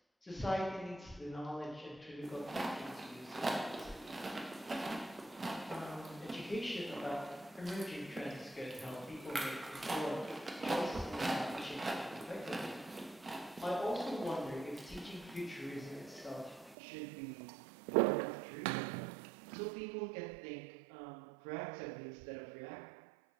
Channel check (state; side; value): drops out; left; at 16.8 s